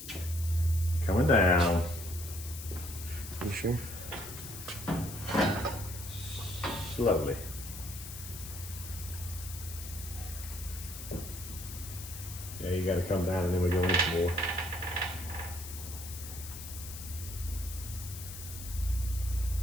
Coming down. You sure? Slowly. Yeah, you got to come down and then we go in some more.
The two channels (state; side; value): noise; left; hiss, 11 dB below the sound